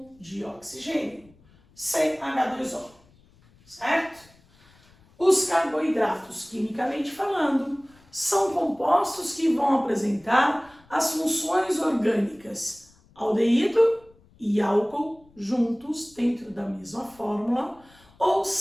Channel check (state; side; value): noise; left; rumble, 29 dB below the sound